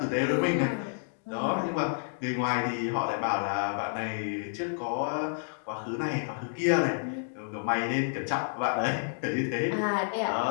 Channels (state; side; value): silent; right; digital silence